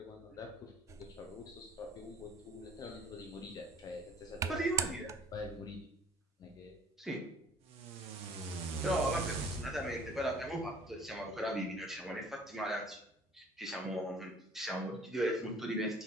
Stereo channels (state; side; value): normal; both; correlation 0.54